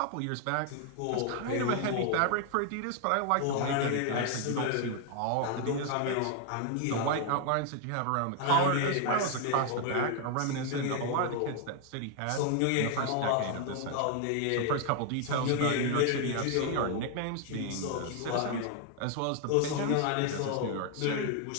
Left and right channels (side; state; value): both; different; correlation 0.00